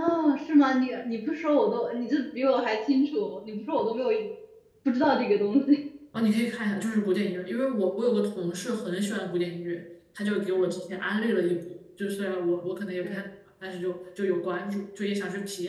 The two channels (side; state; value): both; identical; correlation 1.00